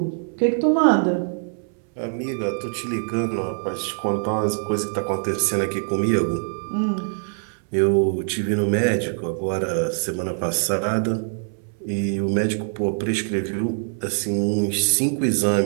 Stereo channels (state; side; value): silent; left; 62 dB below the other